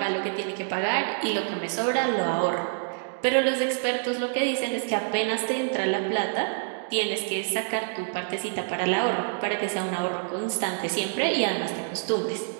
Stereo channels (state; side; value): silent; left; digital silence